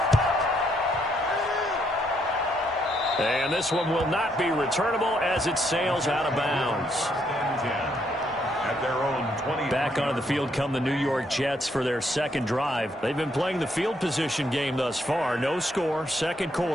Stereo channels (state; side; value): normal; both; correlation 0.73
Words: And this one will not be returnable as it sails out of bounds. At their own 20. Back onto the field come the New York Jets for their second drive. They've been playing the field position game thus far. No score, second